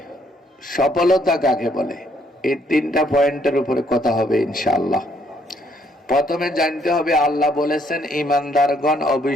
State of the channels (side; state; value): both; normal; correlation 0.68